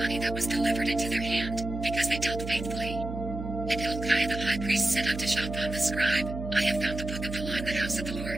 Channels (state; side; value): noise; right; hum, 7 dB below the sound